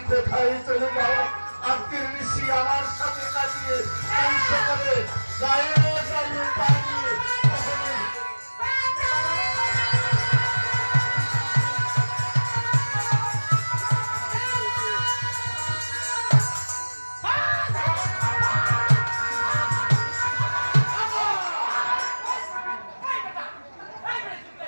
কোথায় চলে যাও আজকের নিশি আমার সাথে কাটিয়ে কাল সকালে গায়ে গায়ে পাঠিয়ে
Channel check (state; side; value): inverted; both; correlation -1.00